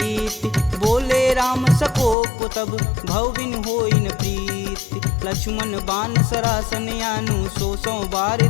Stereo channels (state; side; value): drops out; right; at 2.1 s